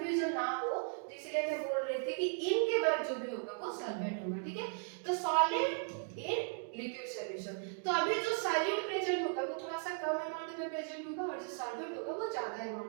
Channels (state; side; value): silent; left; 53 dB below the other